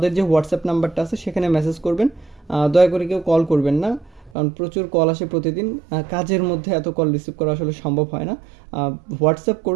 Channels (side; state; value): left; drops out; at 4.3 s